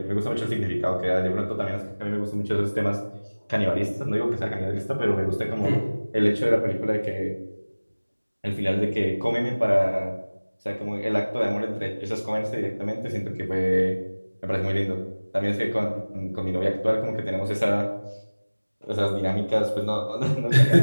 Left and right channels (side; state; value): both; inverted; correlation -1.00